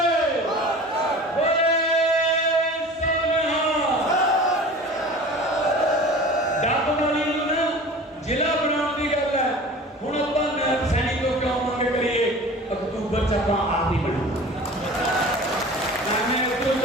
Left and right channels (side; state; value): both; normal; correlation 0.40